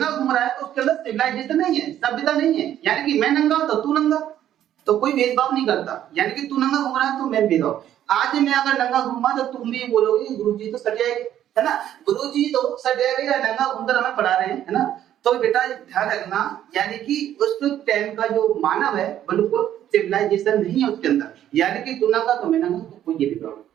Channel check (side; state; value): left; quieter; 11.3 dB